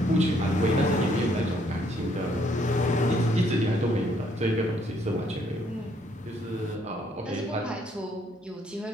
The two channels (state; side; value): normal; both; correlation 0.68